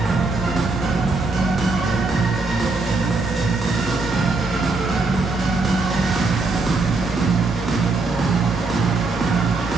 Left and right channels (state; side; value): quieter; left; 3.5 dB